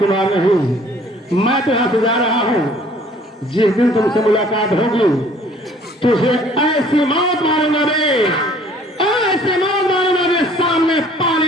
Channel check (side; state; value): both; normal; correlation 0.55